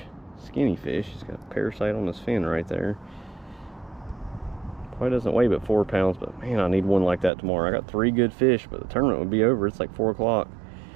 Skinny fish. He's got a parasite on his fin right there. Probably doesn't weigh but 4 pounds, but man, I need one like that tomorrow. I got 3 good fish, but the tournament would be over. It's like 4 o'clock.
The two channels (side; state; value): left; drops out; at 7.3 s